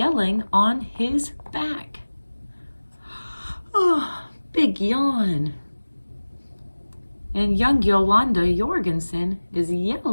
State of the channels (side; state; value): both; inverted; correlation -1.00